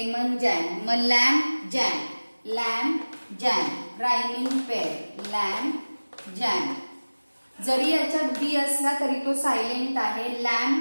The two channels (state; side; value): inverted; both; correlation -1.00